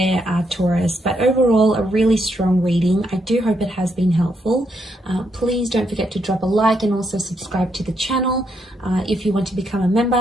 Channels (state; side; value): normal; both; correlation 0.77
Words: Taurus. But overall, a really strong reading. I do hope it has been helpful. Please don't forget to drop a like and also subscribe to the channel. If you want to become a